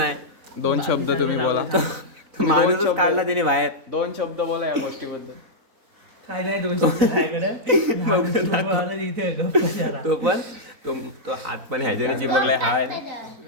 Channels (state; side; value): late; left; 3.9 ms